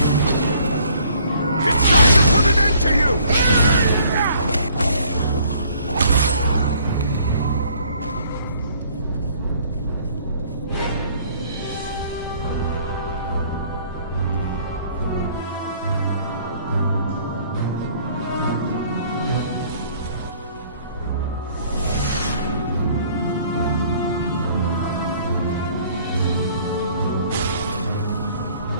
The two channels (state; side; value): inverted; both; correlation -0.59